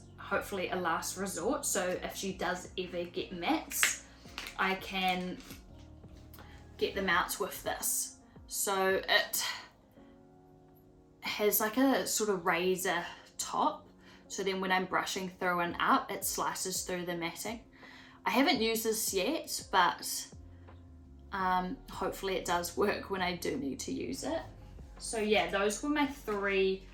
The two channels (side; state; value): both; identical; correlation 1.00